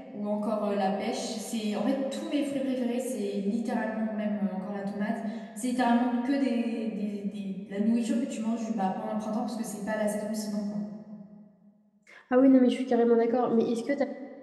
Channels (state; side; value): identical; both; correlation 1.00